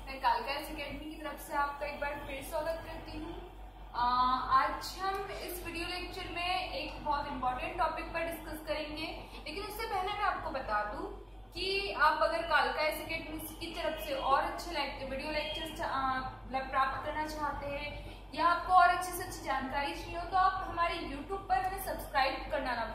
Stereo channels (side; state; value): both; identical; correlation 1.00